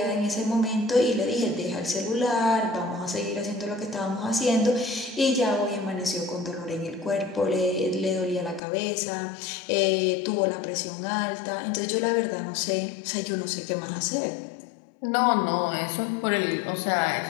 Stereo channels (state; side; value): drops out; right; at 8.6 s